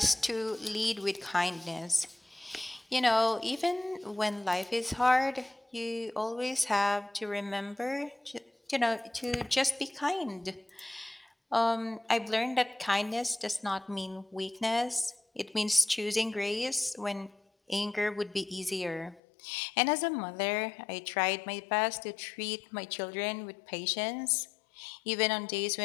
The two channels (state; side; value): drops out; right; at 19.2 s